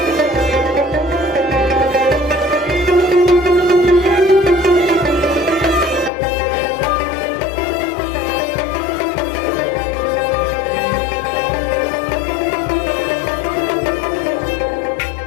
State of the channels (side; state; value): right; drops out; at 6.1 s